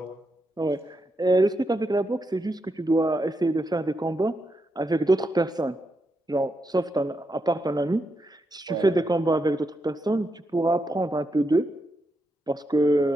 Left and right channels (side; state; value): both; normal; correlation 0.83